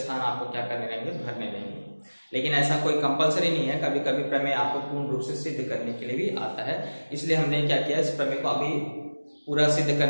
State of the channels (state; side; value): inverted; both; correlation -1.00